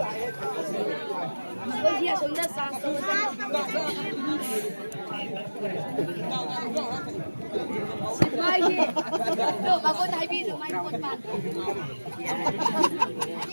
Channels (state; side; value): inverted; both; correlation -1.00